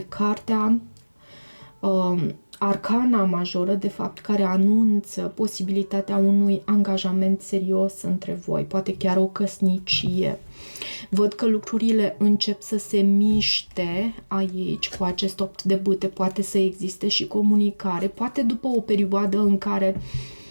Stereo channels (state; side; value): inverted; both; correlation -1.00